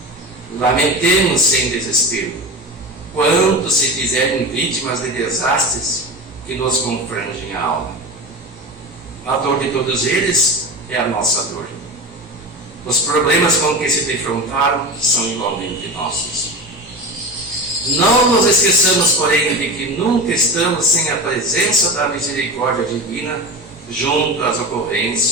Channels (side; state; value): both; normal; correlation 0.27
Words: Lamentemos sem desespero, quanto se fizerem vítimas de desastres que nos confrangem a alma. A dor de todos eles é a nossa dor. Os problemas com que se defrontaram são igualmente nossos. Não nos esqueçamos, porém, de que nunca estamos sem a presença da misericórdia divina junto às